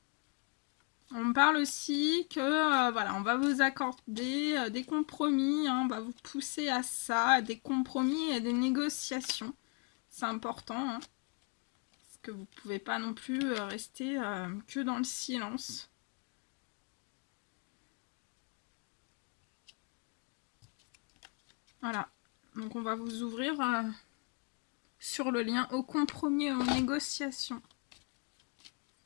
On parle aussi que voilà, on va vous accorder des compromis, hein, on va vous pousser à ça, des compromis et des négociations. C'est important, hein, parce que vous ne pouvez pas non plus rester que dans le silence. Voilà, donc on va vous ouvrir sur le lien au compromis et aux négociations.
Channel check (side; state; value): right; quieter; 34.4 dB